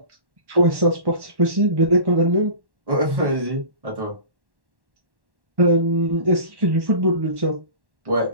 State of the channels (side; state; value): left; late; 1.1 ms